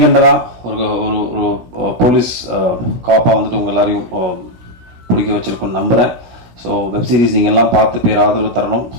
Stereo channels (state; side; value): late; left; 16 ms